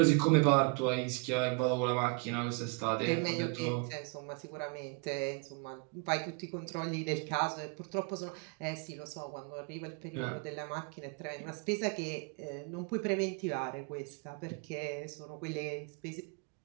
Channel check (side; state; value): left; quieter; 32.5 dB